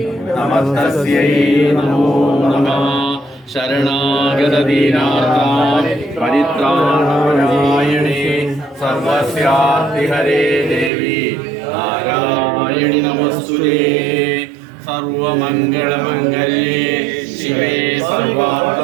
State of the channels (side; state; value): left; drops out; at 10.9 s